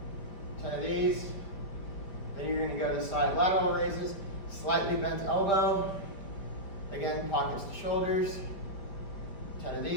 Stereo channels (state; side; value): late; right; 5.0 ms